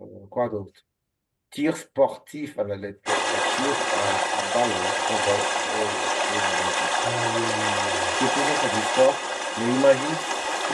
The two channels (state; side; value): identical; both; correlation 1.00